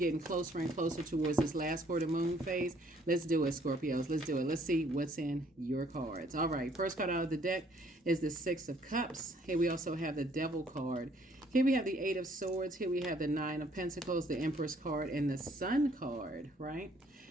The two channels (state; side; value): normal; both; correlation 0.63